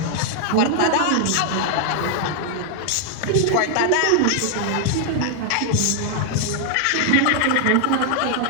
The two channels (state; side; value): different; both; correlation 0.00